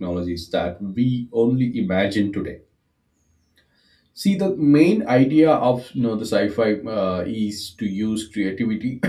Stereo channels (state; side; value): identical; both; correlation 1.00